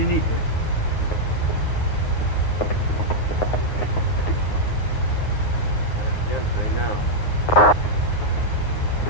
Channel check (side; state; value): right; late; 9.6 ms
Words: needs it. Gentry now.